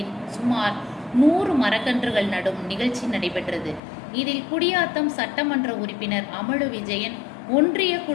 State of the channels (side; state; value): right; drops out; at 3.8 s